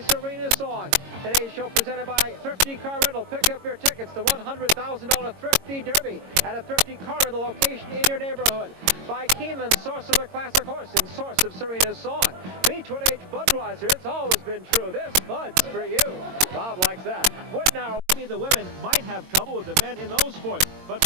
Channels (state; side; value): late; left; 22 ms